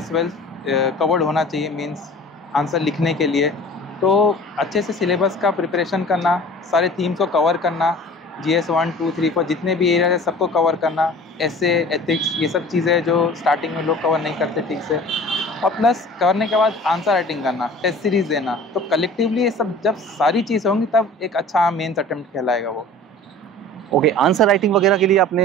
वेल कवर्ड होना चाहिए मीन्स आंसर लिखने के लिए। तो अच्छे से सिलेबस का प्रिपरेशन करना, सारे थीम्स को कवर करना, GS 1 2 3 4 जितने भी एरिया है सबको कवर करना, ऐसे एथिक्स ये सब चीज़ें जो स्टार्टिंग में लोग कवर नहीं करते ठीक से, और प्लस करने के बाद आंसर राइटिंग करना, टेस्ट सीरीज देना। तो कलेक्टिवली ये सब जब सारी चीज़ें होंगी तब एक अच्छा मेंस अटेम्प्ट कहलाएगा वो। ओके, आंसर राइटिंग वगैरह के लिए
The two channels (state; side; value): normal; both; correlation 0.43